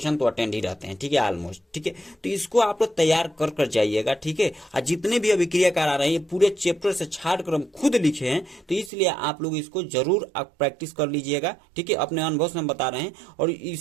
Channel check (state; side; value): drops out; left; at 8.9 s